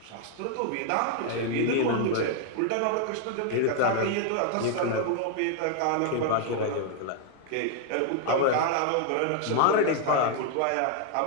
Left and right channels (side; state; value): both; different; correlation 0.00